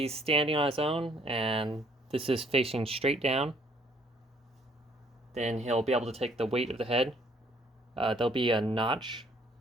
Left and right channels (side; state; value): both; normal; correlation 0.63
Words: standing on his own and this is facing straight down, then he'll be able to take the weight of the head. There'll be a notch